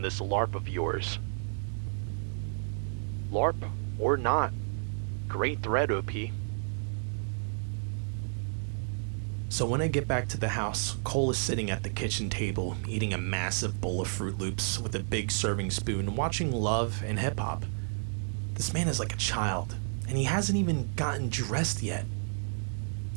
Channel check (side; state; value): left; silent; digital silence